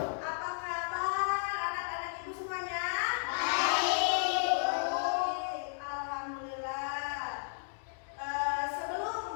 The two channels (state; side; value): silent; right; digital silence